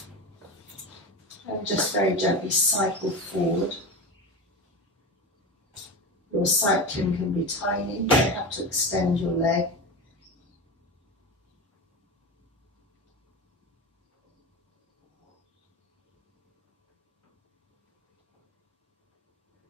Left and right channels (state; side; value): normal; both; correlation 0.24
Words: And just very gently cycle forward. Your cycling can be tiny, you don't have to extend your leg.